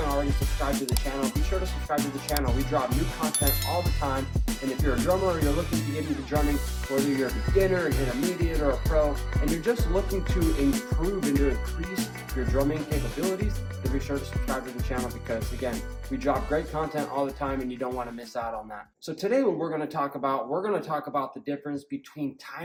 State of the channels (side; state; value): both; identical; correlation 1.00